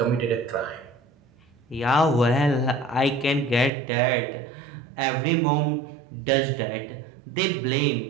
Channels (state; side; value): drops out; left; at 3.7 s